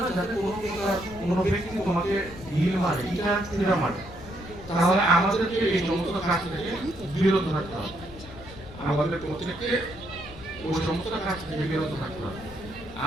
যাতে কোনো ব্যক্তি তোমাকে ঢিল মারে, ইটা ছুঁড়া মারে। তাহলে আমাদেরকে এই সমস্ত কাজ থেকে বিরত থাকতে হবে। আমাদের প্রত্যেককে ওই সমস্ত কাজ থেকে বিরত থাকতে হবে।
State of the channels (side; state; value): left; noise; rumble, 16 dB below the sound